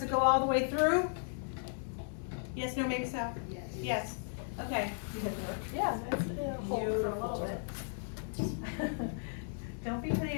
go all the way through. Yes, no, maybe so? Yes. Okay. Yeah, it's hold for a little bit. Don't be putting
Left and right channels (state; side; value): silent; right; digital silence